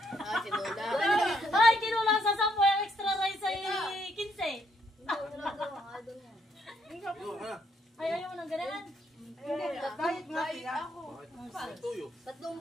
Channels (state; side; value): normal; both; correlation 0.73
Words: si Lola. Ay, kinulang sa 10 yung extra rice ay 15. Ay, ayaw mo ng ganyan. Diet nga siya. Tuyo.